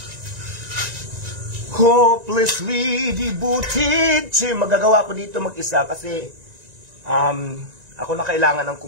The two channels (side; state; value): left; late; 1.9 ms